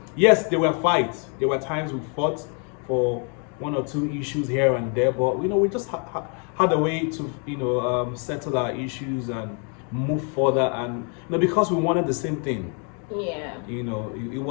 Yes, there were fights. There were times we fought for one or two issues here and there. But we just had a way to settle our issues and move further. And because we wanted the same thing. Yeah. It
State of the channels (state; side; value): quieter; right; 38.8 dB